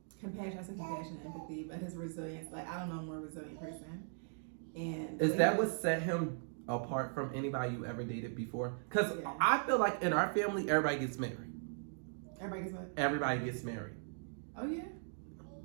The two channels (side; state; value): left; silent; digital silence